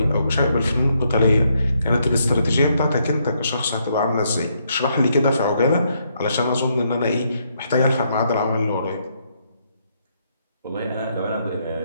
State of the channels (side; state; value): both; inverted; correlation -0.75